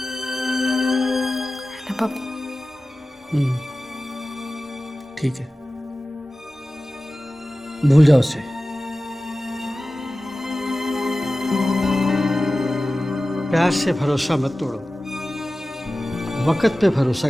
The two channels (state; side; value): normal; both; correlation 0.96